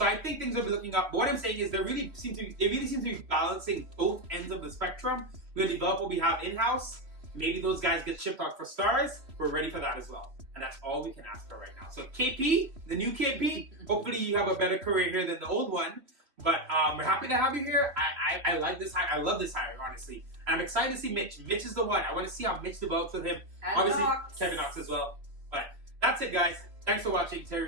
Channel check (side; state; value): left; late; 3.1 ms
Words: I think things will be looking up. But what I'm saying is they really seem to be balancing both ends of the spectrum. We're gonna develop what we have in-house. Maybe those guys get shipped out for stars. We're ready for that as well. And that's all we can ask for right now. So KP, the new KP, hopefully you have a better career here than the old one. But we're happy to have you here. I like this hire. I love this hire, honestly. And I'm excited to see Mitch. Mitch is the one. I want to see how Mitch develops with him. And obviously, Knox. Kevin Knox as well. But that's it, guys. Thanks for watching